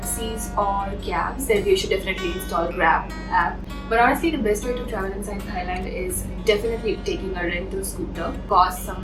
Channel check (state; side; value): identical; both; correlation 1.00